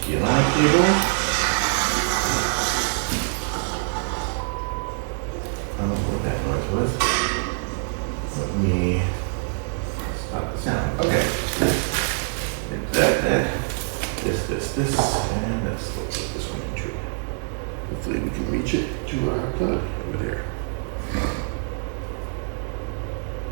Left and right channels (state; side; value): silent; left; digital silence